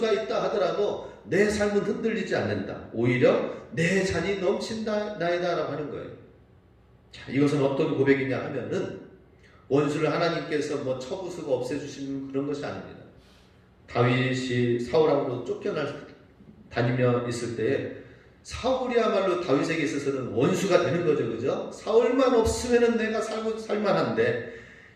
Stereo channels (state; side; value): identical; both; correlation 1.00